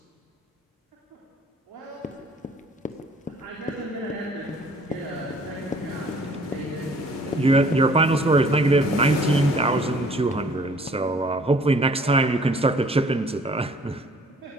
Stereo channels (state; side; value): normal; both; correlation 0.56